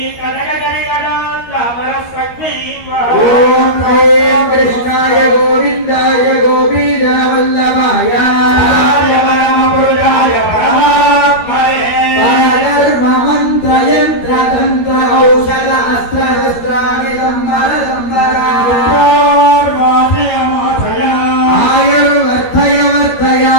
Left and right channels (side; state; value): right; late; 13 ms